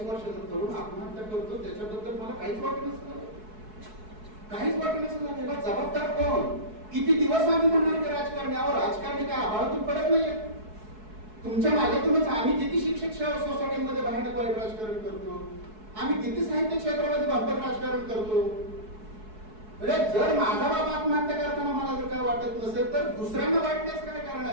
वर्षाचा तरुण आत्महत्या करतो. त्याच्याबद्दल मला काहीच वाटत नसतं, काहीच वाटत नसतं. त्याला जबाबदार कोण? किती दिवस आम्ही म्हणणार की राजकारण्यावर? राजकारणी काय आभाळातून पडत नाहीये. तुमच्या मागेतूनच आम्ही किती शिक्षक सोसायटीमध्ये बाहेर वाईट राजकारण करतो, आम्ही किती साहित्य क्षेत्रामध्ये बंपर राजकारण करतो. म्हणजे जर माझा बाप आत्महत्या करताना मला जर काय वाटत नसेल तर दुसऱ्यांना वाटण्याच काय कारण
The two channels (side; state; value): left; late; 4.7 ms